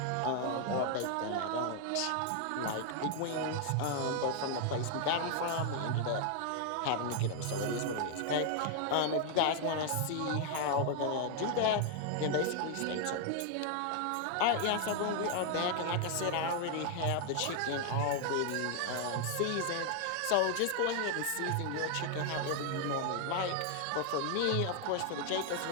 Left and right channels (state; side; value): different; both; correlation 0.00